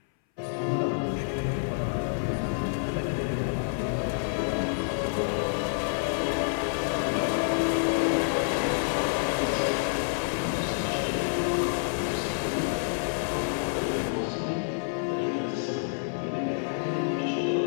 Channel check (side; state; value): right; silent; 59 dB below the other